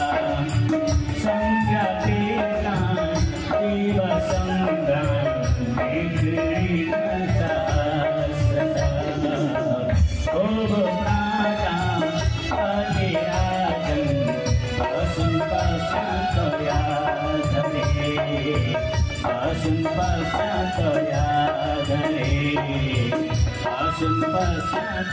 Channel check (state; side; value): identical; both; correlation 1.00